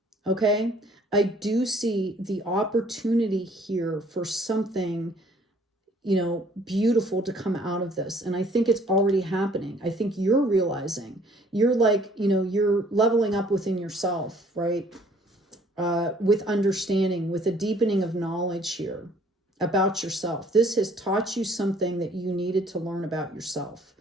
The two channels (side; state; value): both; normal; correlation 0.58